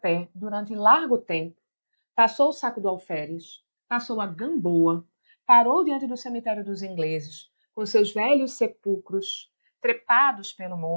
durante largo tempo, passou o saco do alferes, passou a Gamboa, parou diante do cemitério dos ingleses, com seus velhos sepulcros trepados pelo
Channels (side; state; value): both; inverted; correlation -1.00